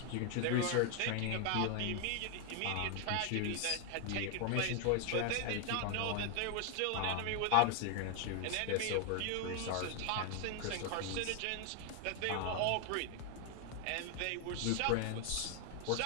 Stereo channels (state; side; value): different; both; correlation 0.00